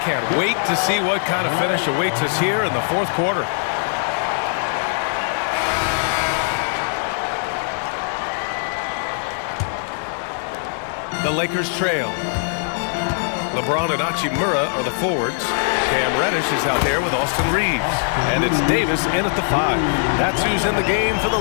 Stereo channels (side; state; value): right; silent; digital silence